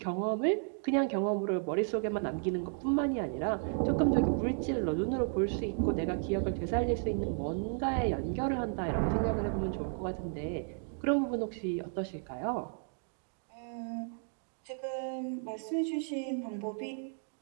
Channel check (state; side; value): silent; left; 55 dB below the other